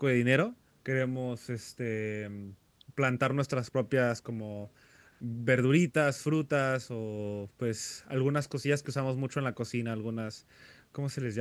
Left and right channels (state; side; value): identical; both; correlation 1.00